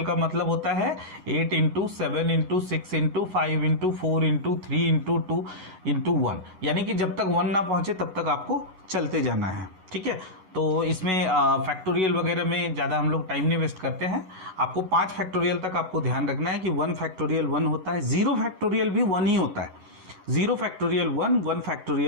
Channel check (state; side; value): late; left; 11 ms